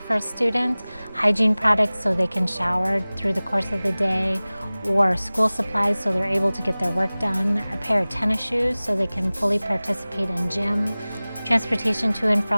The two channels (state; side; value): inverted; both; correlation -0.99